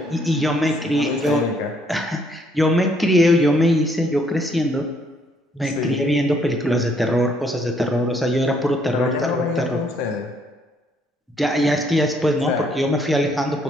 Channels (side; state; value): both; normal; correlation 0.68